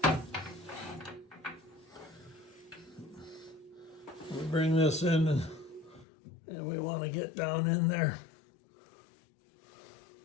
We bring this in and we want to get down in there.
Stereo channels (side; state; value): right; drops out; at 6.1 s